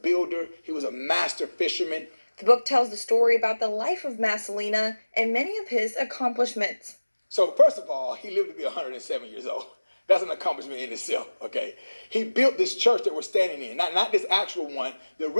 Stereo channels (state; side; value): inverted; both; correlation -1.00